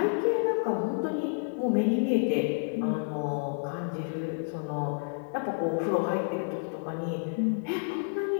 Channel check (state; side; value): silent; right; 58 dB below the other